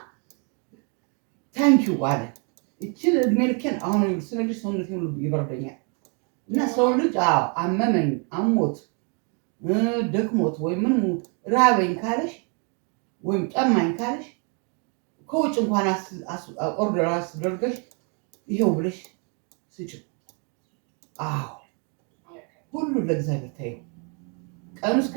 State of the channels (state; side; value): quieter; left; 37.3 dB